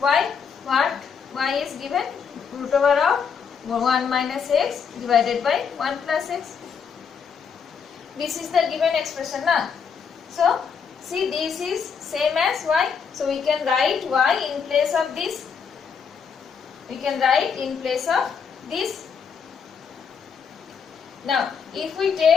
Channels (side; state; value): right; quieter; 6.4 dB